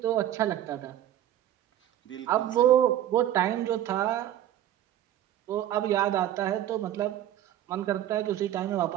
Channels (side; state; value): left; quieter; 12.0 dB